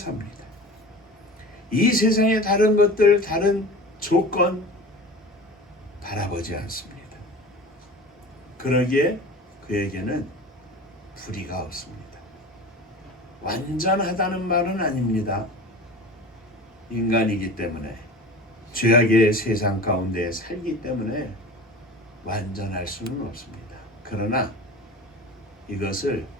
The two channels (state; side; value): normal; both; correlation 0.36